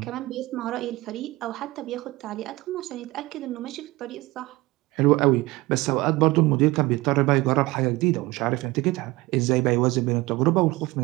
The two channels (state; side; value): quieter; left; 20.7 dB